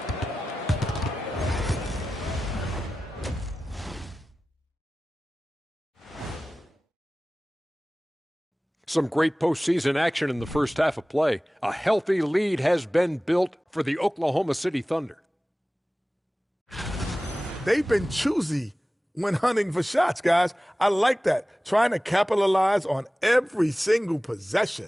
Some great postseason action in the first half of play. A healthy lead has been built for the Oklahoma City Thunder. They've been choosy when hunting for shots, guys. I like that. Trying to capitalize on every single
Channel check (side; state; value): both; normal; correlation 0.96